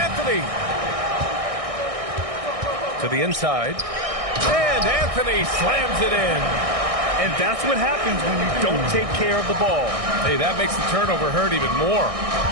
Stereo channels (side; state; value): left; late; 1.6 ms